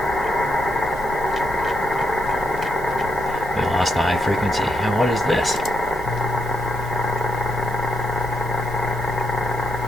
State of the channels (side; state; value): both; normal; correlation 0.79